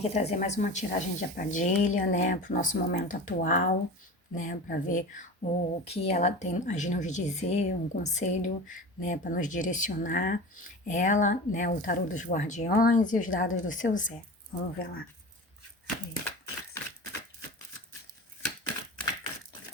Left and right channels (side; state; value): both; normal; correlation 0.32